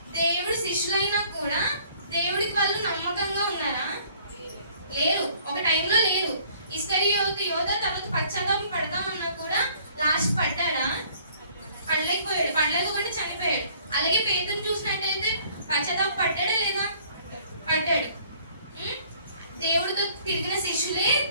దేవుడు శిష్యులైనా కూడా దేవుడికి వాళ్ళు నమ్మకంగా ఉన్నారా? లేరు. ఒక టైంలో లేరు. ఇస్కరియోతు, యూదా తర్వాత పశ్చాత్తాపం పడదామన్నా కూడా లాస్ట్ పడ్డాడా? పడలేకపోతే చనిపోయాడు. అలాగే పేతురు చూసినట్టయితే పశ్చాత్తాపం పడ్డాడా లేదా? పడ్డాడు. దేవుడితో తిరిగిన శిష్యులే,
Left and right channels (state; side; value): inverted; both; correlation -0.57